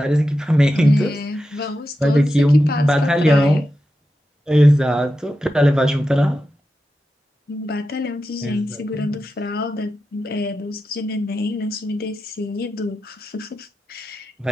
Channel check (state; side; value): normal; both; correlation 0.90